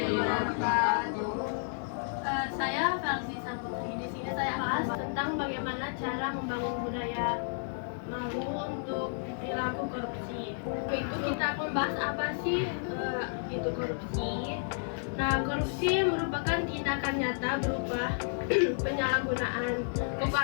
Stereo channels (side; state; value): right; silent; 57 dB below the other